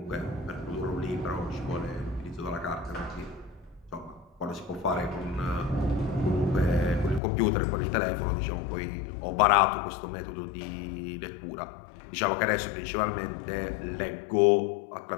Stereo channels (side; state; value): right; drops out; at 7.2 s